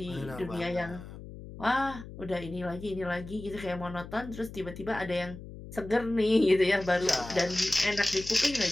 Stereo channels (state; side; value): noise; left; hum, 13 dB below the sound